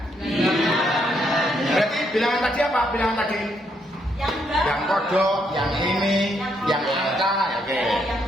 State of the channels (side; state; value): both; normal; correlation 0.75